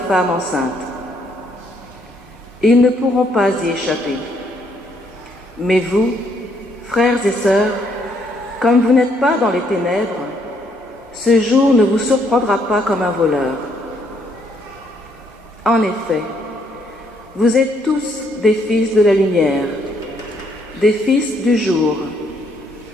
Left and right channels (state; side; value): normal; both; correlation 0.70